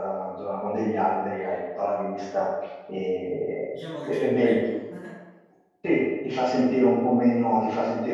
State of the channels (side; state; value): both; identical; correlation 1.00